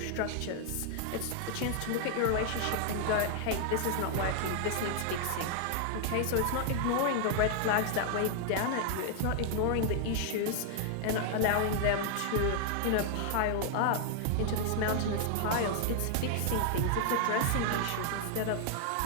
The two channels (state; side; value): different; both; correlation 0.00